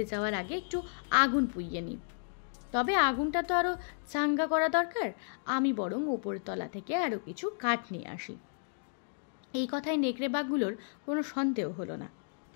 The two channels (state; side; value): silent; right; digital silence